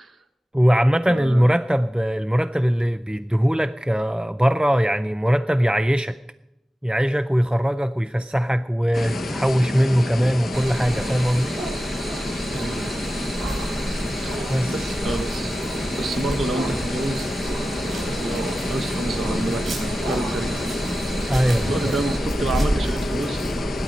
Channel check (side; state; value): both; normal; correlation 0.95